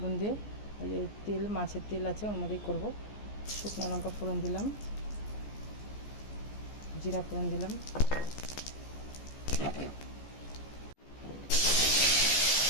দিয়ে। এই যে তেল, মাছের তেল আছে, ওর মধ্যেই করবো। শুকনো লঙ্কা ফোড়ন দিলাম, জিরা ফোড়ন দিলাম,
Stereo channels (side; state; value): right; late; 14 ms